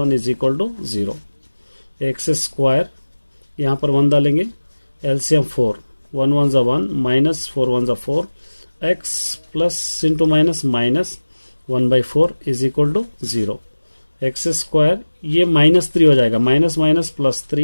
is equal to 0। X square यहाँ पर 1 डालेंगे, एलसीएम 4, 1 1 ज़ा 1 माइनस 4 1 ज़ा 4 x plus into minus 1/4 is equal to 0। X square ये -3 हो जाएगा, minus minus plus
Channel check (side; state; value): both; inverted; correlation -1.00